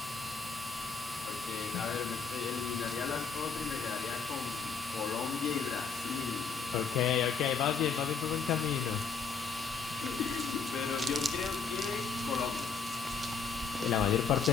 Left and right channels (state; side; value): quieter; right; 5.4 dB